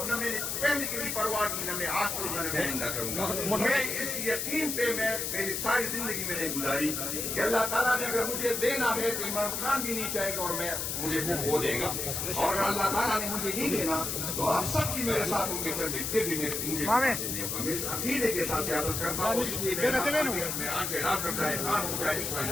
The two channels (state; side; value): noise; left; hiss, 2 dB below the sound